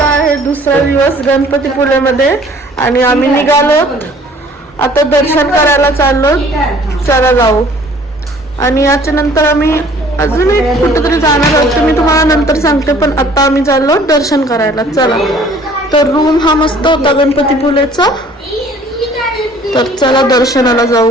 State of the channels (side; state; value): both; normal; correlation 0.54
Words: आहे दुसरा दिवस गणपतीपुळेमध्ये आणि आम्ही निघालो आता दर्शन करायला चाललो. चला जाऊ. आणि याच्या नंतर आम्ही अजून एक कुठेतरी जाणार आहोत ते मी तुम्हाला नंतर सांगते, पण आता आम्ही चाललो दर्शन करायला. चला. तर रूम हा मस्त होता गणपतीपुळेचा. तर चला दर्शनाला